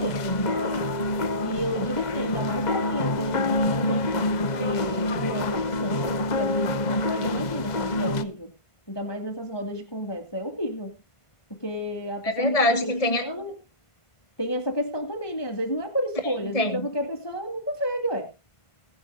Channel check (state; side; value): late; right; 1.5 ms